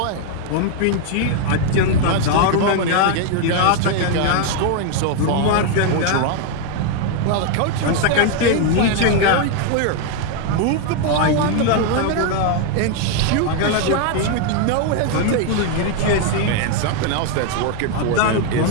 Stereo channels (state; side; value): different; both; correlation 0.01